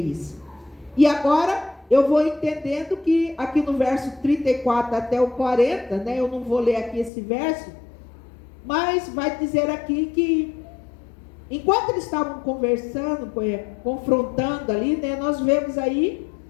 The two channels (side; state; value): right; drops out; at 7.1 s